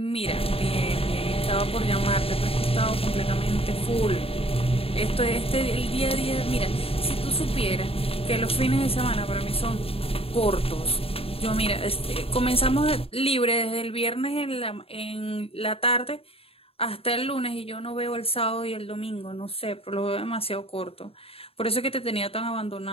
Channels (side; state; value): right; late; 0.28 ms